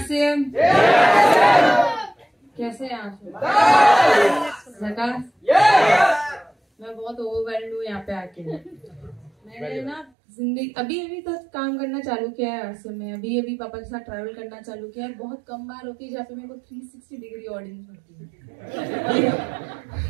कैसे हैं आप? मैं बहुत ओवरवेल्ड हूँ यहाँ पे आके। मैंने ना जिंदगी अभी तक काम करना चालू किया है आरसीएम में। अभी पापा के साथ ट्रैवल करना चालू किया है। बहुत कम बार होती है जहाँ पे मेरे को 360 डिग्री ऑडियंस होती है।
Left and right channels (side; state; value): left; drops out; at 10.1 s